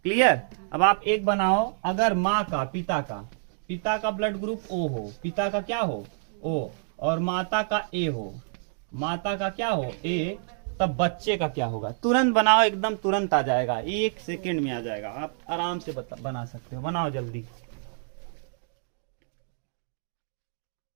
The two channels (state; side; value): silent; left; digital silence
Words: क्लियर। अब आप एक बनाओ, अगर माँ का, पिता का ब्लड ग्रुप ओ हो, पिता का क्या हो ओ, और माता का ए हो, माता का क्या हो ए, तब बच्चे का क्या होगा। तुरंत बनाओ, एकदम तुरंत आ जाएगा, 1 सेकेंड में आ जाएगा। आप आराम से बना सकते हो, बनाओ जल्दी।